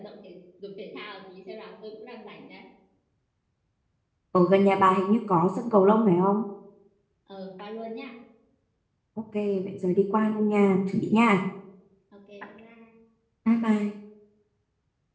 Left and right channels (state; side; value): identical; both; correlation 1.00